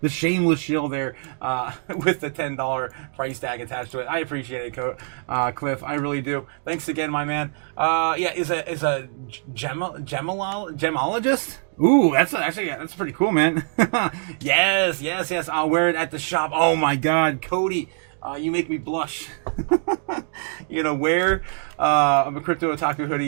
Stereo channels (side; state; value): left; silent; 59 dB below the other